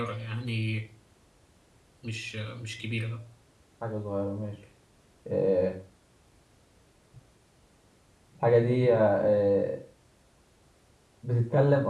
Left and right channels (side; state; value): both; identical; correlation 1.00